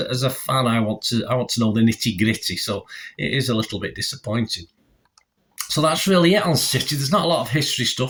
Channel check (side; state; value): both; identical; correlation 1.00